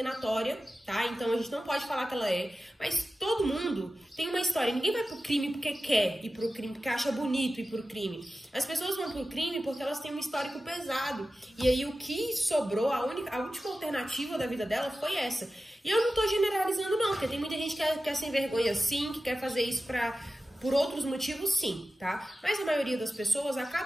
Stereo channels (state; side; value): normal; both; correlation 0.94